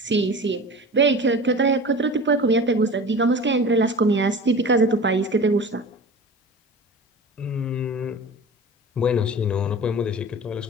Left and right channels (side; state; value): both; normal; correlation 0.36